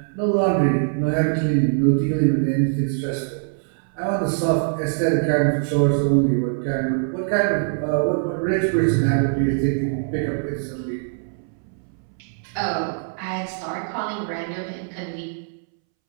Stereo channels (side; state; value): left; silent; 64 dB below the other